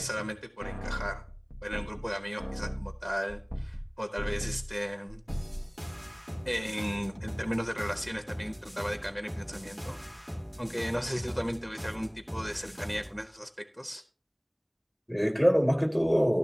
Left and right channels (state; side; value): identical; both; correlation 1.00